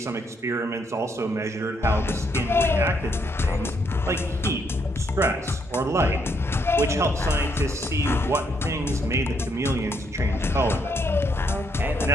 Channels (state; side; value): normal; both; correlation 0.73